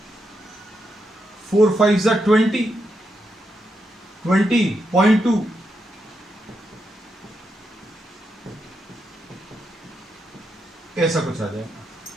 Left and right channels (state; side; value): normal; both; correlation 0.83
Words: 4 5 जा 20, 20.2, ऐसा कुछ आ जाएगा